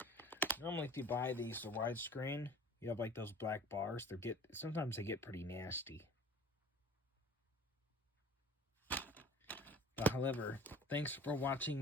Normally if you buy these the widescreen, you have like those black bars. Sometimes they get pretty nasty. But however, thanks for watching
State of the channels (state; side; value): normal; both; correlation 0.44